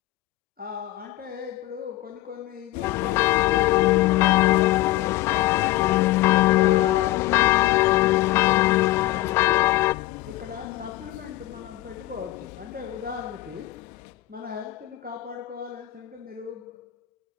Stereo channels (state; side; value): quieter; right; 16.9 dB